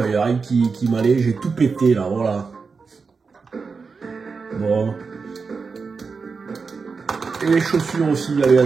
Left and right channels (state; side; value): quieter; left; 4.9 dB